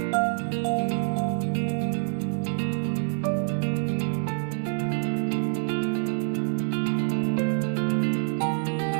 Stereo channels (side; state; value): left; silent; digital silence